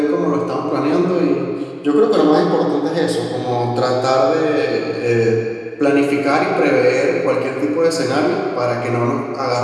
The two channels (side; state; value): both; identical; correlation 1.00